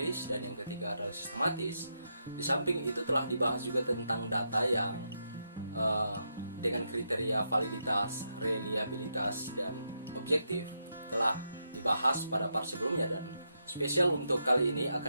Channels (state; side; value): inverted; both; correlation -0.82